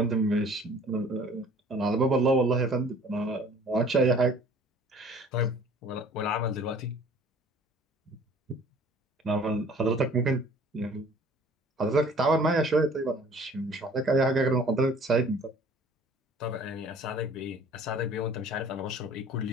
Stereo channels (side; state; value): both; normal; correlation 0.51